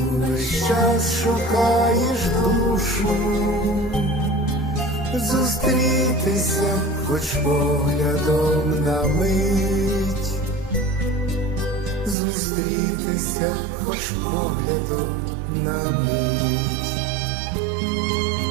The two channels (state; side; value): drops out; left; at 12.2 s